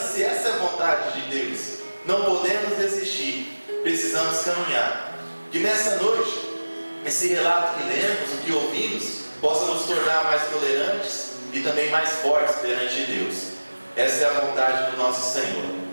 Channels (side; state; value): both; inverted; correlation -1.00